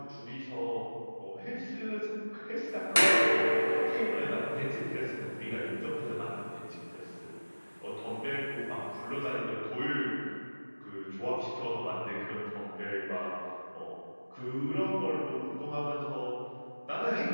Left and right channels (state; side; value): inverted; both; correlation -1.00